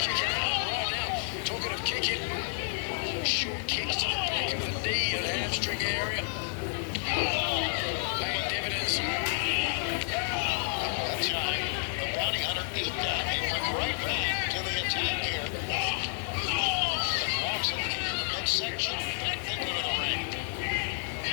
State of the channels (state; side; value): silent; right; digital silence